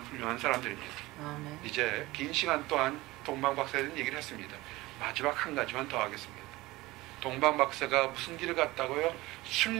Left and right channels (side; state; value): left; quieter; 19.7 dB